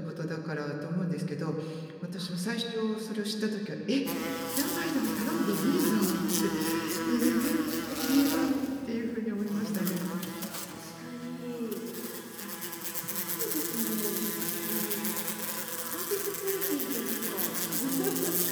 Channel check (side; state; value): both; identical; correlation 1.00